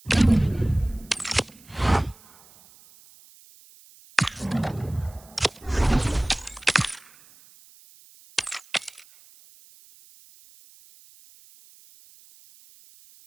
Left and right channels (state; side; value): noise; right; hiss, 25 dB below the sound